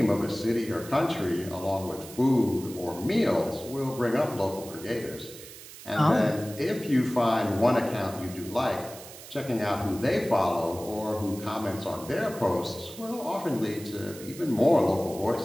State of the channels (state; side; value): noise; right; hiss, 16 dB below the sound